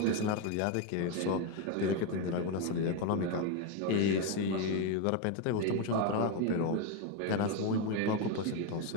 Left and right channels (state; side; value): different; both; correlation 0.02